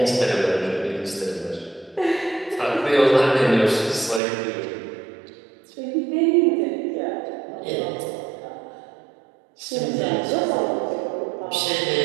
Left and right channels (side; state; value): left; drops out; at 4.2 s